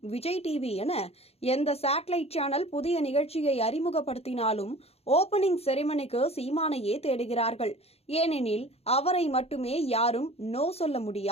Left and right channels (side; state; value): right; late; 0.29 ms